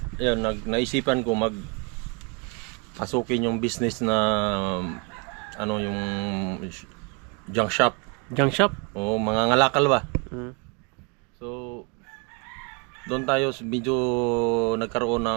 ayun, naisipan ko pasukin yung business na yung junk shop. Junk shop? Oo, mga ngalakal ba? So, doon tayo medyo nagkaroon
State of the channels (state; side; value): quieter; left; 32.6 dB